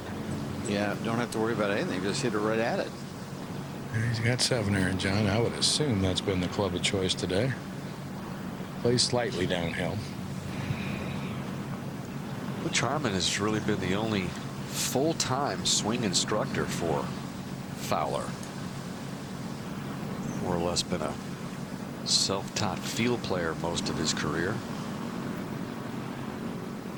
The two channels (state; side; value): identical; both; correlation 1.00